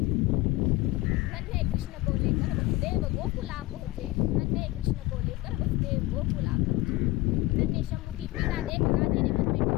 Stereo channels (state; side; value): quieter; right; 19.4 dB